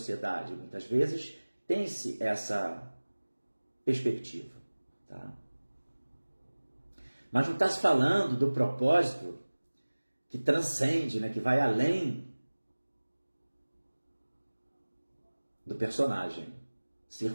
Muitas vezes tem-se essa perspectiva, tá? Mas não está se falando do propósito que transcende, né, que vai além do personagem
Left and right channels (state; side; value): inverted; both; correlation -1.00